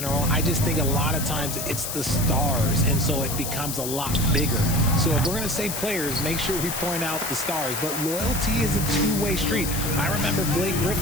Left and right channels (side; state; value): left; noise; hiss, 4 dB below the sound